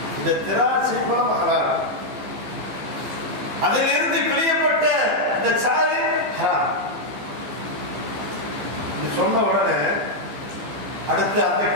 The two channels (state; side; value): late; left; 14 ms